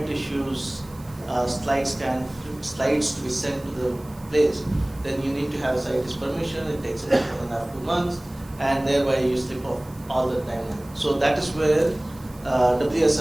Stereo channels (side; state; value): right; noise; hiss, 25 dB below the sound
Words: tissues slides to be sent to the place, then you need to have scientist permission. It takes 1.5 to 2 months, and thereby you slip off all the time. So that is where